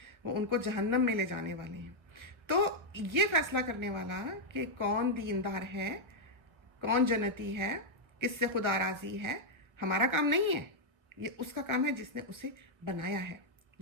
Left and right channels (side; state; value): left; late; 1.3 ms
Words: वो उनको जहन्नम में ले जाने वाले हैं। तो ये फैसला करने वाला कि कौन दीनदार है, कौन जन्नती है, किससे खुदा राजी है, हमारा काम नहीं है। ये उसका काम है जिसने उसे बनाया है,